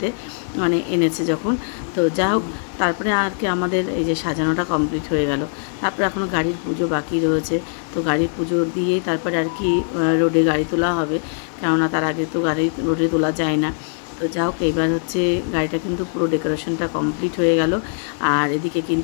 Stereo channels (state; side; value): silent; right; 63 dB below the other